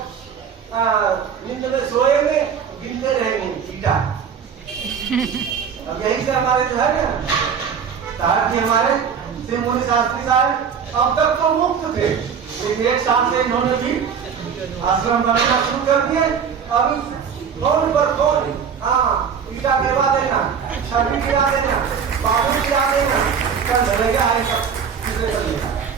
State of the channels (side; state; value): left; quieter; 7.0 dB